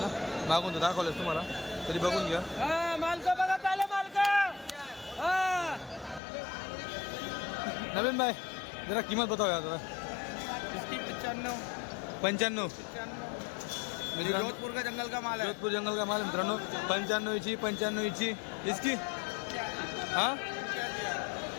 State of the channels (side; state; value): right; drops out; at 6.2 s